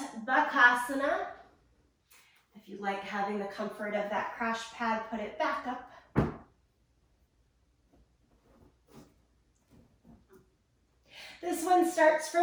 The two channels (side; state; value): both; identical; correlation 1.00